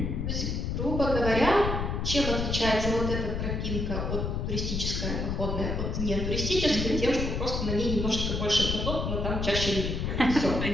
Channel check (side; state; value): left; noise; rumble, 1 dB below the sound